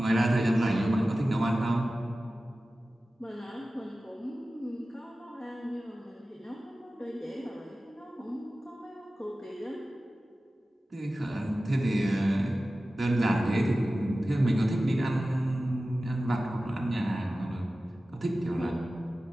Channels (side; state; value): both; normal; correlation 0.95